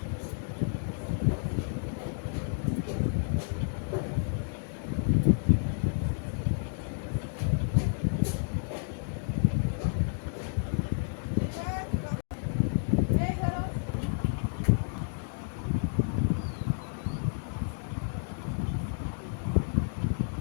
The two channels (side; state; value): right; silent; digital silence